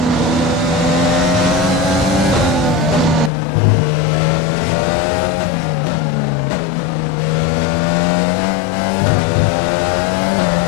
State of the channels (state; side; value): drops out; right; at 3.3 s